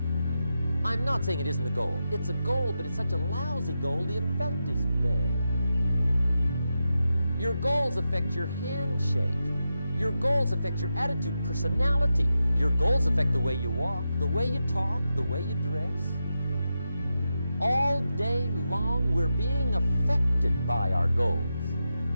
I'm not saying it isn't a goal. It's a goal, but it's such a lousy goal, the effect is bad. Your goals affect your handshake. Your goals affect your attitude, personality. Your goals affect the way you walk, the way you talk, the way you dress. All day long, we're being affected by our goals.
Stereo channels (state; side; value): inverted; both; correlation -0.88